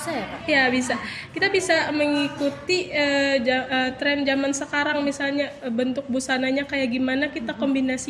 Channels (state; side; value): identical; both; correlation 1.00